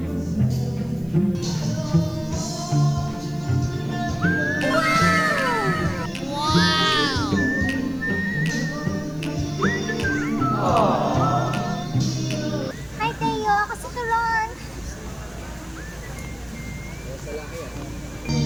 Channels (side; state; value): right; noise; hiss, 29 dB below the sound